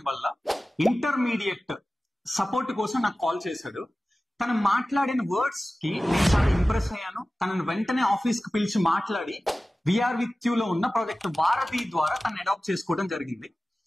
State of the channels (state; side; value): normal; both; correlation 0.96